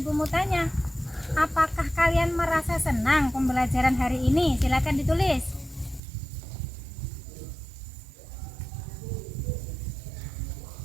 mau tanya, apakah kalian merasa senang pembelajaran hari ini? Silakan ditulis.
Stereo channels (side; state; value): left; drops out; at 6.0 s